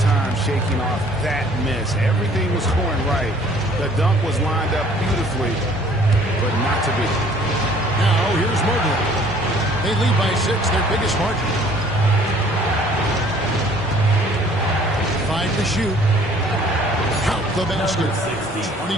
shaking off that miss. Everything was scoring right. The dunk was lined up beautifully, but not to be. Now, here's Mobley. They lead by 6, their biggest margin. 5 to shoot. Count the basket.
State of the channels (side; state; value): both; normal; correlation 0.55